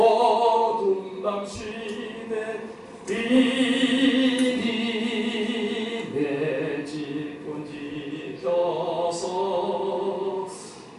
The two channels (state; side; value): identical; both; correlation 1.00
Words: 밤 시내 비니 내 집은 지켜서